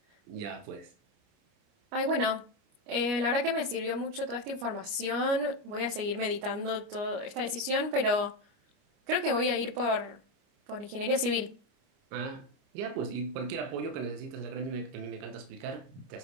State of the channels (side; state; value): left; late; 29 ms